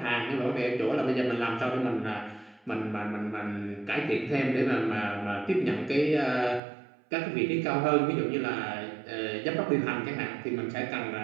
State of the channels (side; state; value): left; drops out; at 6.6 s